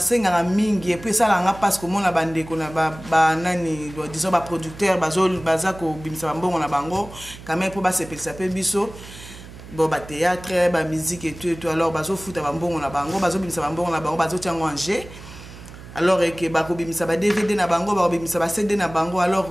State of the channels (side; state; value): right; noise; hum, 16 dB below the sound